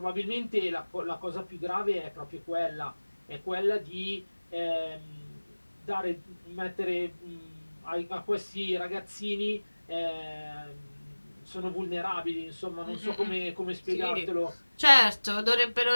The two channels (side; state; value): both; inverted; correlation -1.00